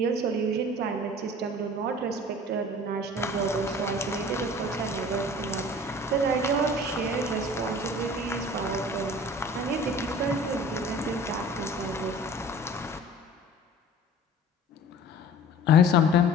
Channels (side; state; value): both; normal; correlation 0.44